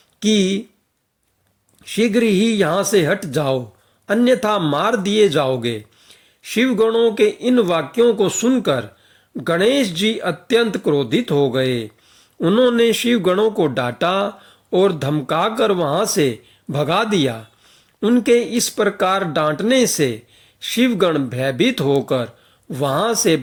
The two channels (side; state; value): both; identical; correlation 1.00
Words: कि शीघ्र ही यहाँ से हट जाओ, अन्यथा मार दिए जाओगे। शिवगणों के इन वाक्यों को सुनकर गणेश जी अत्यंत क्रोधित हो गए। उन्होंने शिवगणों को डांटा और धमकाकर वहां से भगा दिया। उनके इस प्रकार डांटने से शिवगण भयभीत होकर वहां से